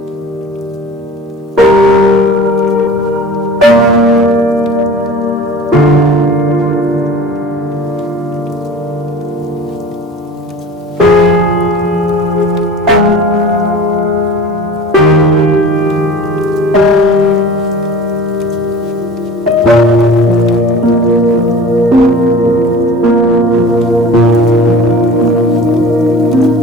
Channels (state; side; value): normal; both; correlation 0.40